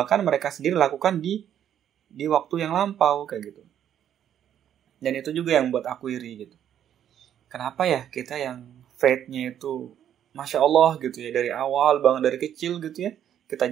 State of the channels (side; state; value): left; quieter; 10.0 dB